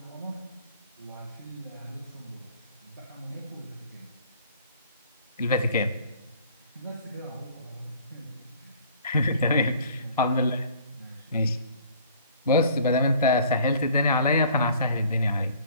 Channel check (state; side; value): inverted; both; correlation -0.52